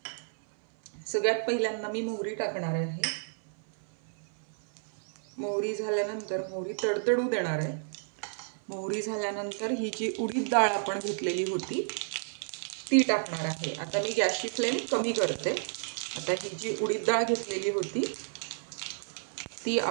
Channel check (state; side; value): silent; left; 57 dB below the other